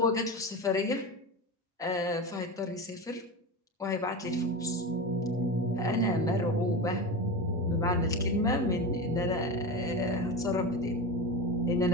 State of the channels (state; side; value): normal; both; correlation 0.23